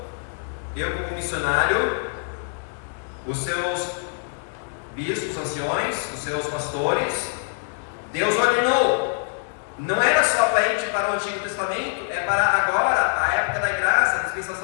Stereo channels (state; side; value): silent; right; digital silence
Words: eu como missionário, os seus bispos, anciões, os seus pastores, Deus ordenou. Não era só para o Antigo Testamento, é para agora, a época da graça, a